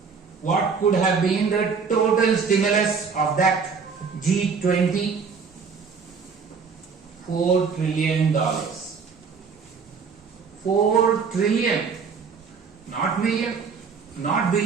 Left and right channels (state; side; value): quieter; left; 5.5 dB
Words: What could have been the total stimulus of that G20? $4 trillion. 4 trillion. Not million, not